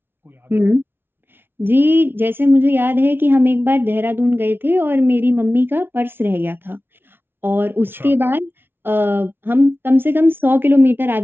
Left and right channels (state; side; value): late; left; 0.11 ms